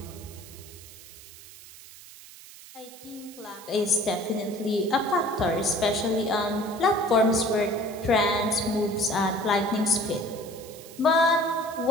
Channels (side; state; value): right; noise; hiss, 18 dB below the sound